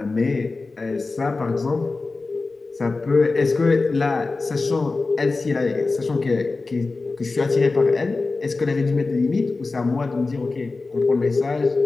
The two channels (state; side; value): quieter; right; 3.7 dB